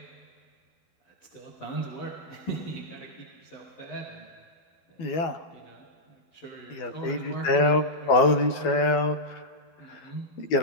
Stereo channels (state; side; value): late; right; 12 ms